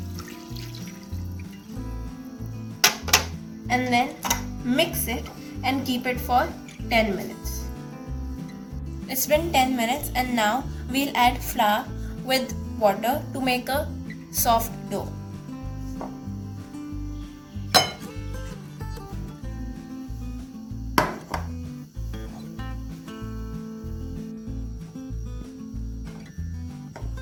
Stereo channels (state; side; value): identical; both; correlation 1.00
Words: And then mix it and keep it for 10 minutes. It's been 10 minutes and now we'll add flour with water to make a soft dough.